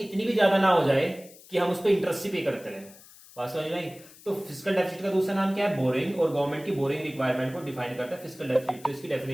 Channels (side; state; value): left; noise; hiss, 22 dB below the sound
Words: भी ज्यादा ना हो जाए कि हम उस पर इंटरेस्ट ही पे करते रहे। बात समझ में आई। तो फिस्कल डेफिसिट का दूसरा नाम क्या है, बोरोइंग, और गवर्नमेंट की बोरोइंग रिक्वायरमेंट को डिफाइन करता है फिस्कल डेफिसिट। तो इसकी